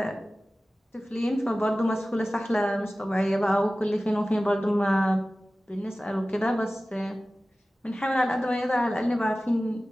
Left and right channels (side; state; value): both; normal; correlation 0.96